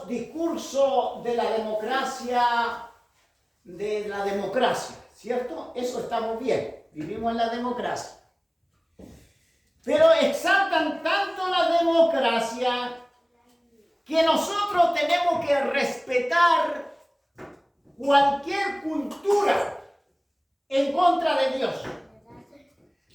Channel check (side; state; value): both; identical; correlation 1.00